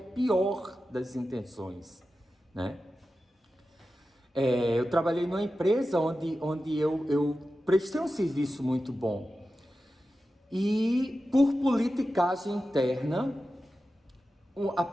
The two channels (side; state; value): both; normal; correlation 0.93